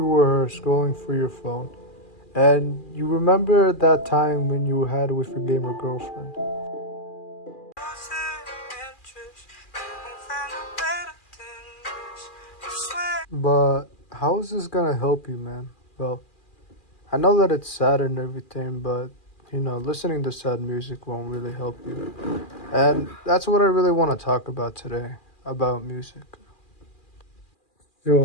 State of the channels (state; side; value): late; right; 2.4 ms